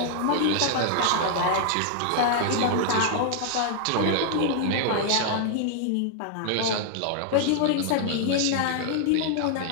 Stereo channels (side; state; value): both; different; correlation 0.00